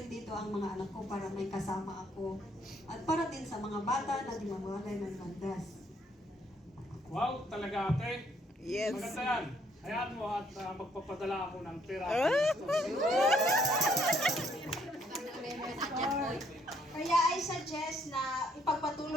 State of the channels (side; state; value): both; normal; correlation 0.67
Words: dito ang mga anak ko para may kasama ako at para din sa mga bata na di mawalay ng landas. Wow, talaga ate. Yes. Maganda yan. Hayaan mo at magpapadala ako ng pera. Kaya I suggest na